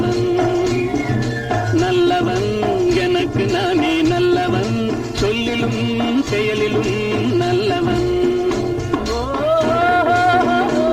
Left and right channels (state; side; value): identical; both; correlation 1.00